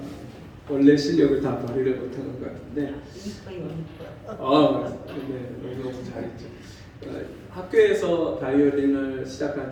원래 실력을 다 발휘를 못하는 것 같은데 네, 너무 잘했죠. 학교에서 바이올린을 시작한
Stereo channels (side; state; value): both; identical; correlation 1.00